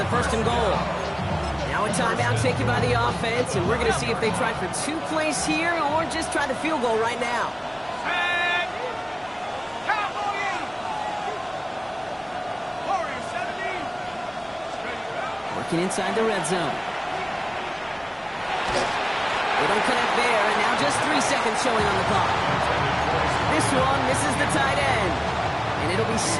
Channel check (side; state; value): both; identical; correlation 1.00